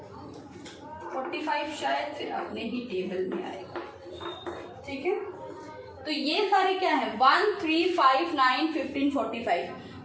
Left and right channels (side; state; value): both; identical; correlation 1.00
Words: 45 शायद फिर अपने ही टेबल में आएगा। ठीक है, तो ये सारे क्या है, 1, 3, 5, 9, 15, 45,